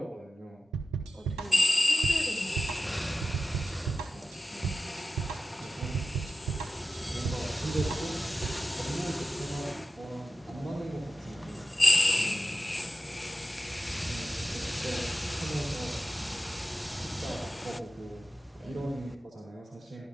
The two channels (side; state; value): both; normal; correlation 0.94